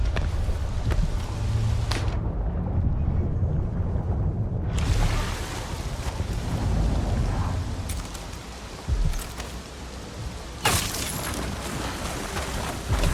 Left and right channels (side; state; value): both; identical; correlation 1.00